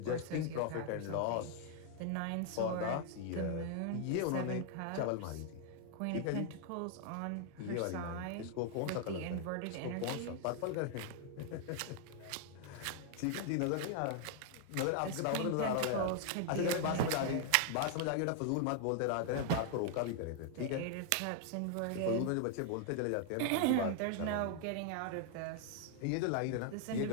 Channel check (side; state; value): both; different; correlation 0.00